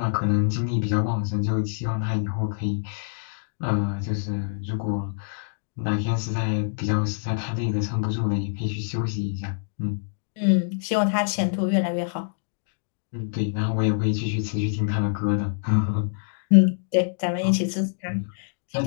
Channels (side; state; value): right; silent; digital silence